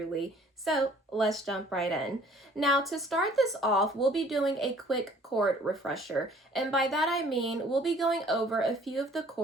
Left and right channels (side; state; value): both; normal; correlation 0.55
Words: So let's jump right in. Now to start this off, we'll be doing a quick chord refresher, and by that I mean we'll be going over a few of the